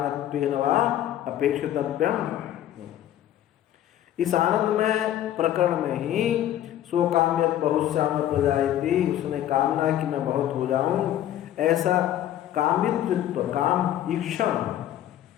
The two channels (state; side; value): quieter; right; 12.0 dB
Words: वा अपेक्षितव्यम। इस आनंदमय प्रकरण में ही स्वकाम्यत बहुश्याम प्रजायति, उसने कामना कि मैं बहुत हो जाऊं, ऐसा कामित्व काम ईक्षण